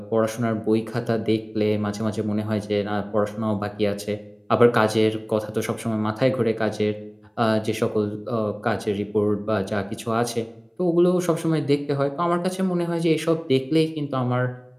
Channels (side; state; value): both; identical; correlation 1.00